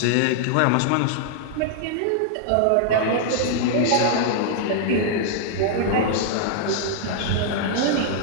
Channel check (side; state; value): both; different; correlation -0.01